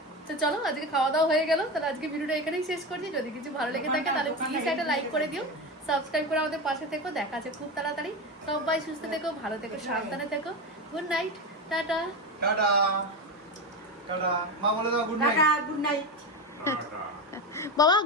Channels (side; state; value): both; normal; correlation 0.20